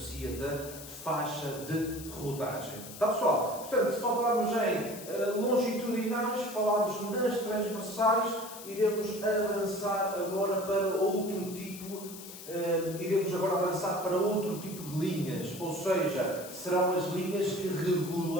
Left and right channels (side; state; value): left; noise; hiss, 13 dB below the sound